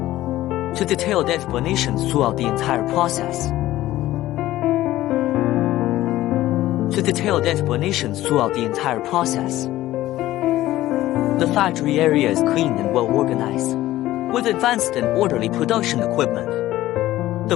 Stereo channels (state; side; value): quieter; right; 15.3 dB